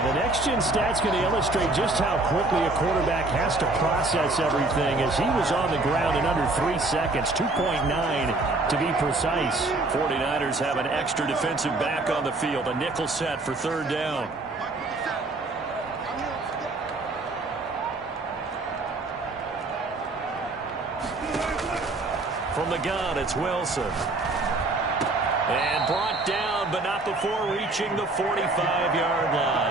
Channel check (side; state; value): left; quieter; 3.0 dB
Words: the next-gen stats going to illustrate just how quickly a quarterback has to process everything, as he was on the ground in under 3 seconds, 2.9 to be precise. 49ers have an extra defensive back on the field, a nickel set for third down. From the gun, it's Wilson. And brought down, but not before reaching the 45-yard